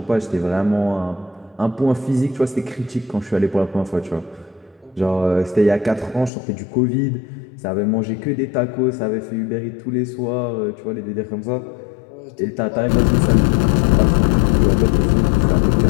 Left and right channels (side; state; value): right; drops out; at 6.3 s